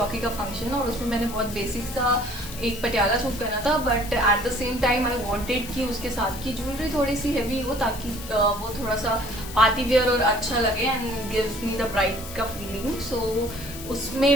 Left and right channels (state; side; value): noise; left; hiss, 13 dB below the sound